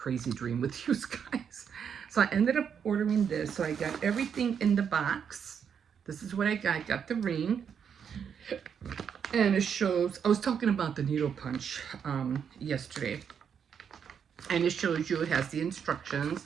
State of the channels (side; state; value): left; quieter; 7.5 dB